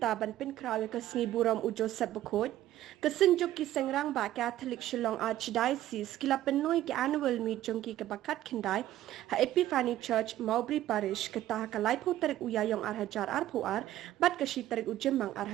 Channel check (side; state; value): left; quieter; 13.7 dB